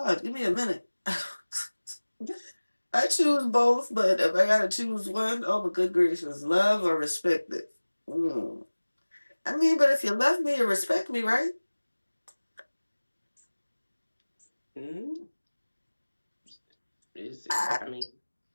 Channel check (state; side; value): inverted; both; correlation -1.00